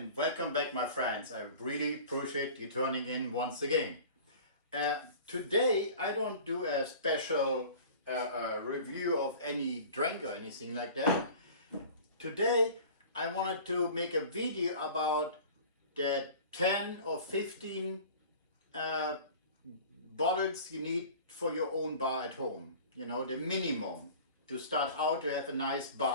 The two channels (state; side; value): inverted; both; correlation -0.41